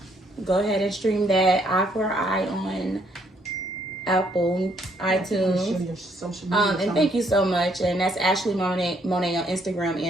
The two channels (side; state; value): both; normal; correlation 0.69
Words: Go ahead and stream that eye for eye on Apple, iTunes. your social media. And thank you so much. And that's Ashley Monet on Instagram